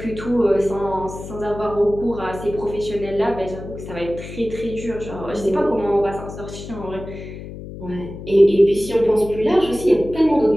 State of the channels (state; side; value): noise; left; hum, 12 dB below the sound